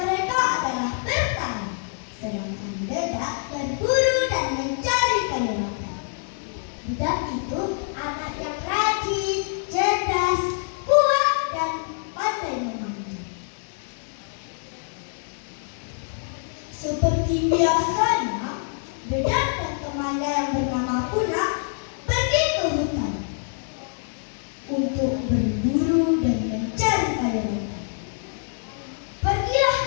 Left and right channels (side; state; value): right; silent; 59 dB below the other